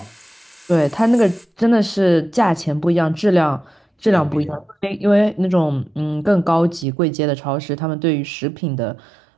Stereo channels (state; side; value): drops out; left; at 6.9 s